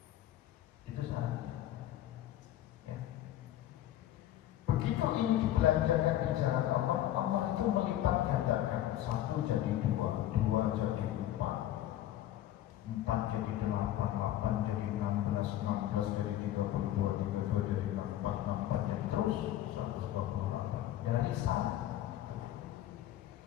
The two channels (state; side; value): quieter; right; 13.1 dB